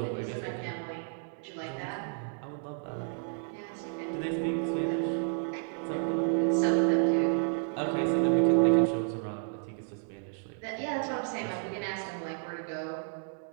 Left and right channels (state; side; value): silent; left; 57 dB below the other